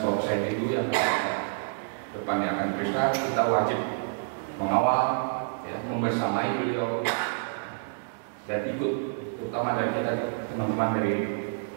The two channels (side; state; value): left; silent; digital silence